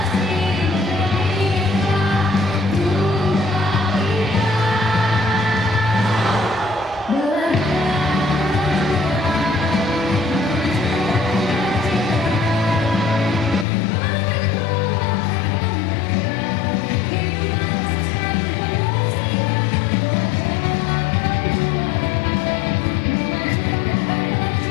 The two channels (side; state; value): right; drops out; at 13.7 s